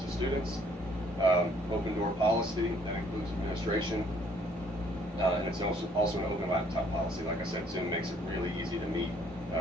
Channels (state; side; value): normal; both; correlation 0.62